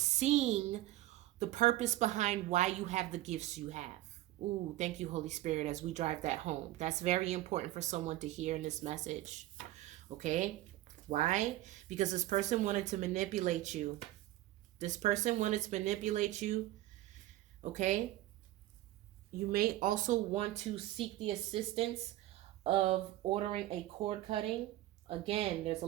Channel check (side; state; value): left; quieter; 15.7 dB